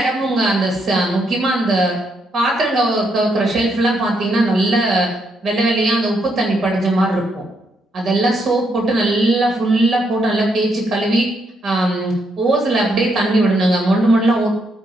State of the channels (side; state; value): both; normal; correlation 0.77